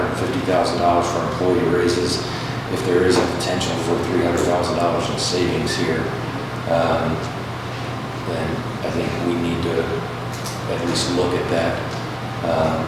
for employee raises. If there is a potential for $300,000 in savings here, then I think we need to at least look at that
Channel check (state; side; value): identical; both; correlation 1.00